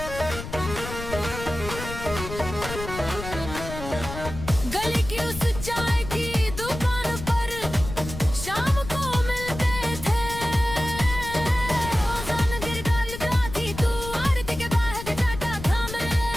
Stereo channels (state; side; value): noise; left; rumble, 9 dB below the sound